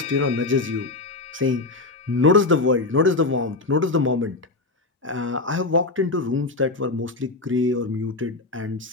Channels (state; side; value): quieter; right; 3.3 dB